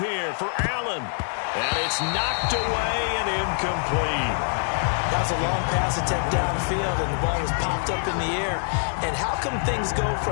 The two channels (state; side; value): silent; right; digital silence